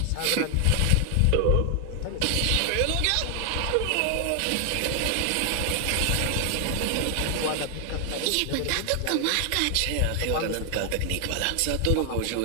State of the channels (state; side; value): different; both; correlation 0.00